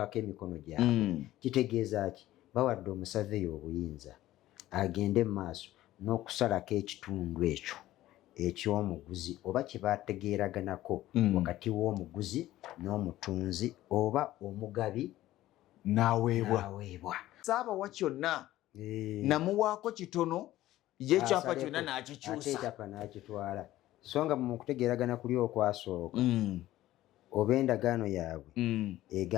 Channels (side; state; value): right; quieter; 15.1 dB